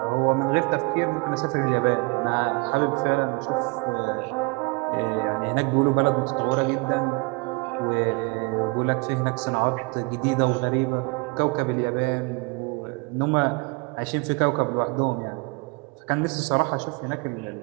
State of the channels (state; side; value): quieter; left; 30.0 dB